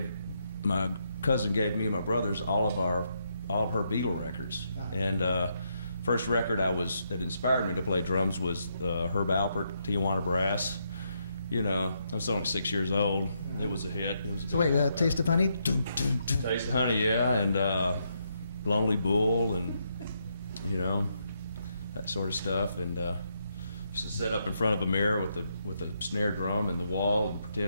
me and my brothers all of her Beatle records. And first record that inspired me to play drums was Herb Alpert, Tijuana Brass. You know, I was only 6 years old. It was a hit. It was a So wait, Taste of Honey? Dun, dun, dun. Taste of Honey, yeah, and Lonely Bull, and you know, that sort of stuff. And used to sit up in front of a mirror with a snare drum in the wall and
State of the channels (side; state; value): both; inverted; correlation -0.78